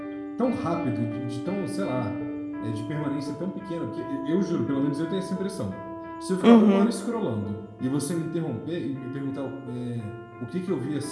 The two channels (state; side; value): identical; both; correlation 1.00